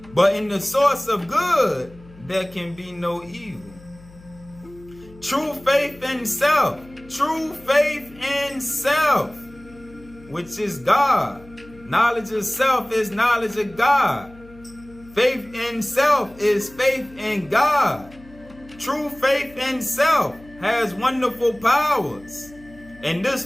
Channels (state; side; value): noise; left; hum, 22 dB below the sound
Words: But in the source of good, there can be no evil. True faith in self, which is God. Knowledge of self is knowledge of God. Faith in self is faith in God. True faith in self has wonderful powers. And this